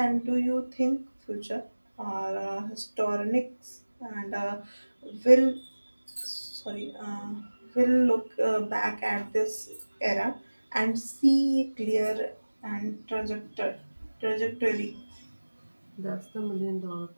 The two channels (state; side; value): inverted; both; correlation -1.00